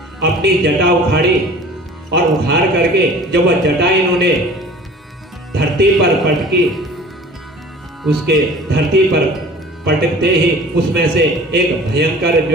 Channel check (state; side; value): normal; both; correlation 0.45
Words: अपनी जटा उखाड़ी, और उखाड़ करके जब वह जटा इन्होंने धरती पर पटकी, उसके धरती पर पटकते ही उसमें से एक भयंकर